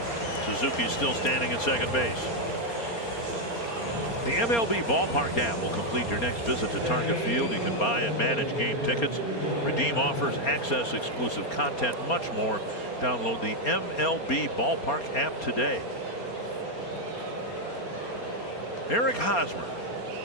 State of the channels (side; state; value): right; late; 4.3 ms